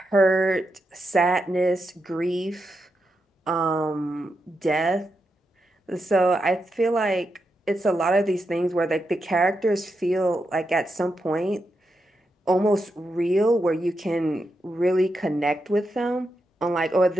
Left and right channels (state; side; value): normal; both; correlation 0.85